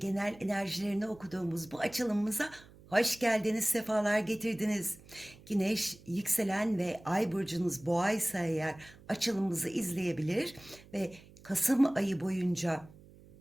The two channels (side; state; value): right; noise; hum, 23 dB below the sound